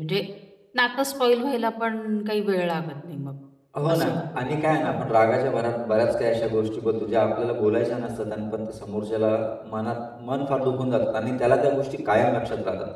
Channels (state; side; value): identical; both; correlation 1.00